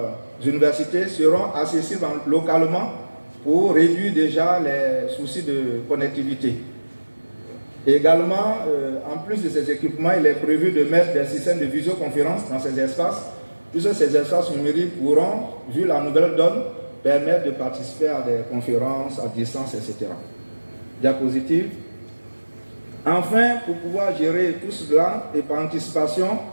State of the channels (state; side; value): inverted; both; correlation -1.00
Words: universités seront accessibles localement pour réduire déjà les soucis de connectivité. Et également, en plus de ces équipements, il est prévu de mettre des systèmes de visioconférence dans ces espaces, puisque ces espaces numériques pourront, vu la nouvelle donne, permettre de participer à des conférences à distance, etc. Diapositive. Enfin, pour pouvoir gérer tout cela et par anticipation,